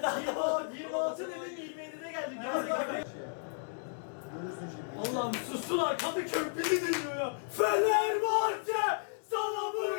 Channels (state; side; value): silent; right; 55 dB below the other